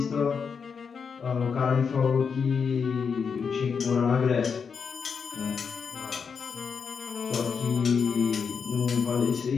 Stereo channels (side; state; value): right; quieter; 6.1 dB